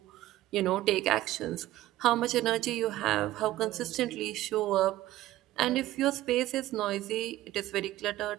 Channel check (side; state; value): left; quieter; 15.4 dB